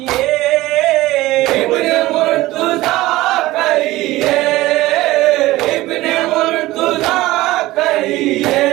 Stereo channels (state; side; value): quieter; left; 17.8 dB